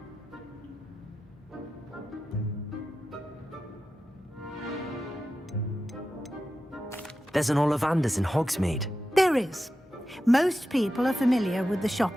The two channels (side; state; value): both; normal; correlation 0.91